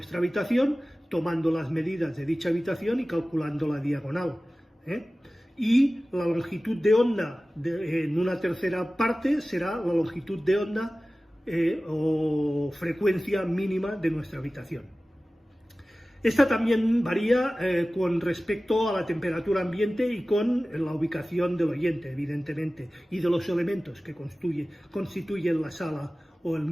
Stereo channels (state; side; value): normal; both; correlation 0.96